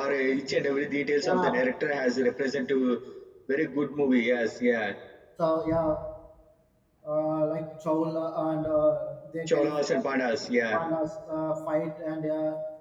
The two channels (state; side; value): identical; both; correlation 1.00